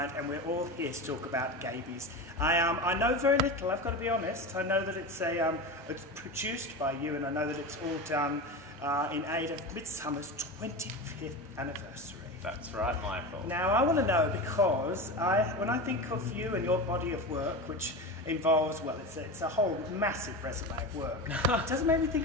and we're all here to talk about Gaybies. I know very little, I've got to be honest. I know that it's produced by you and I know that it's all done in aid of Midsumma's 25th anniversary. That's right, Michael. Now, I want to know because when I think of you and your body of work, which involves, well, it's a whole massive resume of work, it doesn't make me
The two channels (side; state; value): both; normal; correlation 0.25